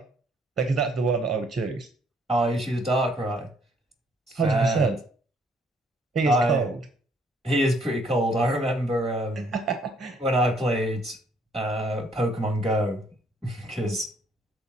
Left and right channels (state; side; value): normal; both; correlation 0.66